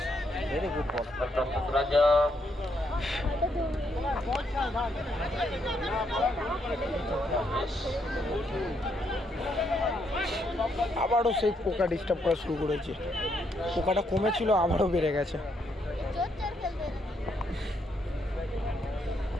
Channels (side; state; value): both; normal; correlation 0.76